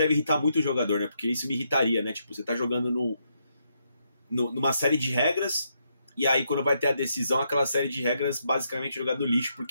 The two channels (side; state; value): both; inverted; correlation -0.79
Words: irritar muito o jogador, né? Porque isso me irritaria, né? Tipo, você tá jogando numa série de regras, e aí quando vai ter a decisão, aquela série de regras basicamente jogada no lixo,